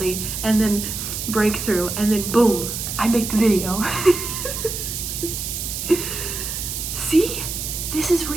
and then breakthrough, and then boom, I make the video. See? This is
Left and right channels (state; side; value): noise; right; hiss, 5 dB below the sound